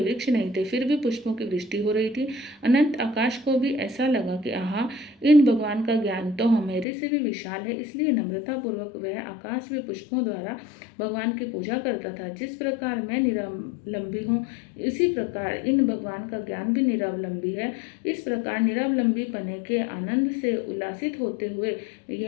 वृक्ष नहीं थे, फिर भी पुष्पों की वृष्टि हो रही थी। अनंत आकाश को भी ऐसा लगा कि आहा, इन भगवान का ज्ञान तो हमारे से भी विशाल है। इसलिए नम्रतापूर्वक वह आकाश में पुष्पों द्वारा भगवान की पूजा करता था। जिस प्रकार मैं निरावलंबी हूँ, इसी प्रकार इन भगवान का ज्ञान भी निरावलंबी है। इस प्रकार निरावलंबी पने के आनंद से उल्लासित होते हुए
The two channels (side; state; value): right; drops out; at 6.9 s